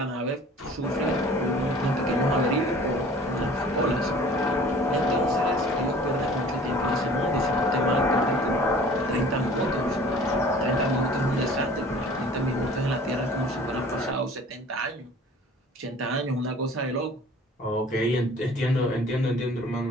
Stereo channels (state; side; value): normal; both; correlation 0.48